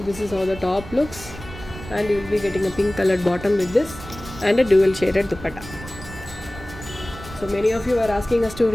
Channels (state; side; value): noise; right; rumble, 14 dB below the sound